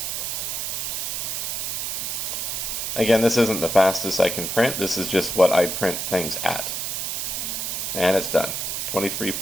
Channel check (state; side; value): noise; right; hiss, 2 dB below the sound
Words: Again, this isn't the fastest I can print, this is just what I print things at. And it's done.